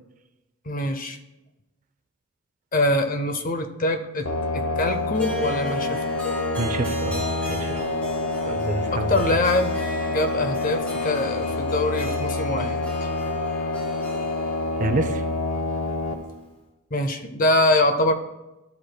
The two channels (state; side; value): normal; both; correlation -0.02